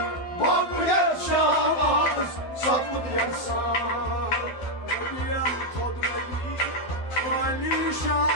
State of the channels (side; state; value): right; late; 12 ms